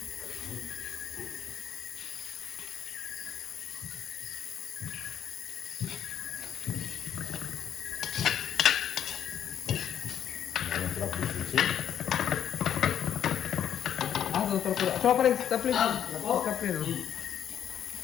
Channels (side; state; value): right; quieter; 9.6 dB